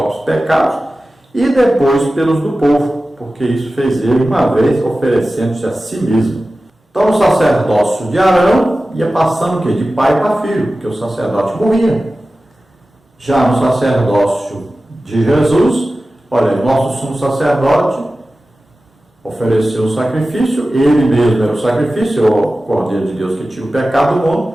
pecados e depois pelos do povo, porque isso fez ele uma vez, oferecendo-se a si mesmo. Então o sacerdócio de Arão ia passando o quê? De pai para filho, porque o sacerdote morria. Já no sacerdócio de Jesus, olha, nosso sumo sacerdote ofereceu o sacrifício, ele mesmo era o sacrifício, o Cordeiro de Deus que tira o pecado do mundo,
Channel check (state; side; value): normal; both; correlation 0.95